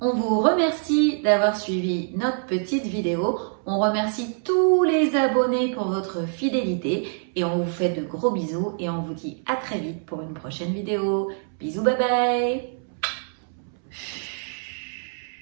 on vous remercie d'avoir suivi notre petite vidéo. On remercie tous les abonnés pour votre fidélité et on vous fait de gros bisous et on vous dit à très vite pour une prochaine vidéo. Bisous, bye bye!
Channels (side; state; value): left; silent; 62 dB below the other